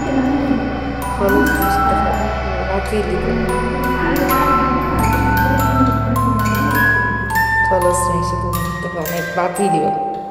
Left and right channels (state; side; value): identical; both; correlation 1.00